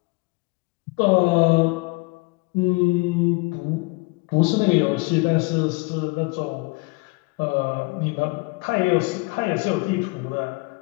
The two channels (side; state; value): right; quieter; 26.7 dB